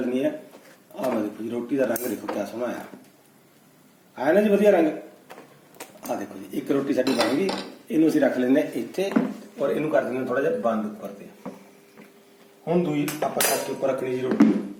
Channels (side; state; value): both; identical; correlation 1.00